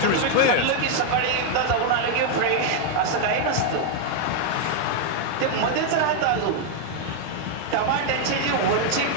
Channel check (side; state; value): both; different; correlation 0.00